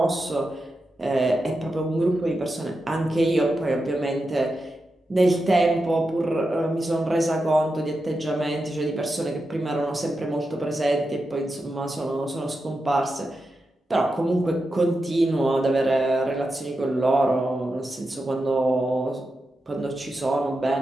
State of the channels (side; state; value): both; normal; correlation 0.89